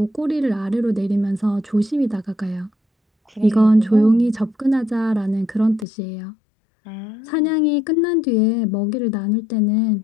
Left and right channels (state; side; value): drops out; right; at 5.9 s